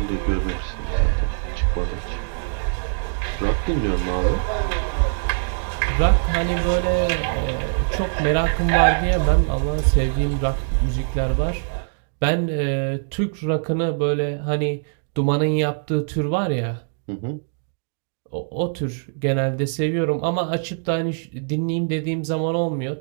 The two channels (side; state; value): left; silent; digital silence